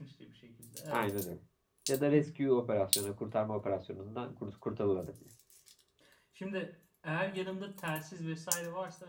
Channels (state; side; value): identical; both; correlation 1.00